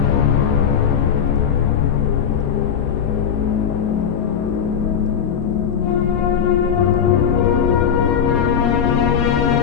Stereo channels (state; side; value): quieter; right; 7.7 dB